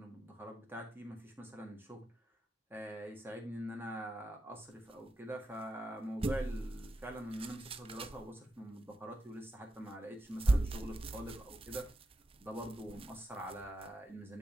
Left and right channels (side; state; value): both; normal; correlation 0.88